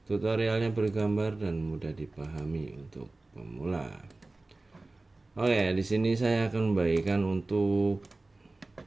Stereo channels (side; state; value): left; quieter; 3.1 dB